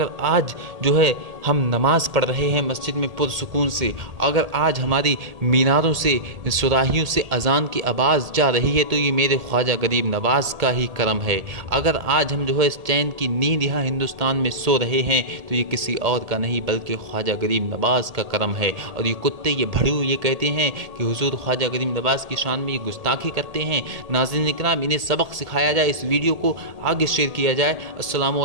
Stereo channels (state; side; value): late; left; 1.8 ms